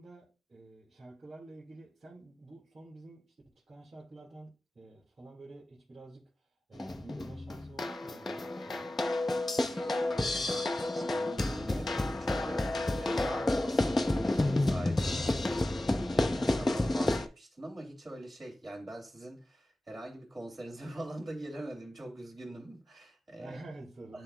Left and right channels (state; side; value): normal; both; correlation 0.95